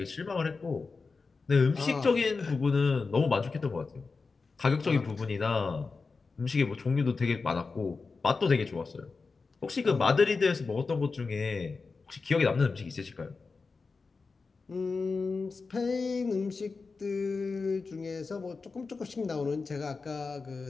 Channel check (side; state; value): right; quieter; 4.4 dB